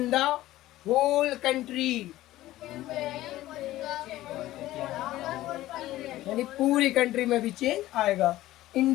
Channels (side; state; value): right; quieter; 15.6 dB